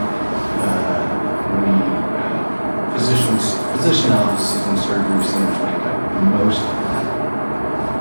Physician offices and surgery centers make up most of that.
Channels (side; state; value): both; inverted; correlation -1.00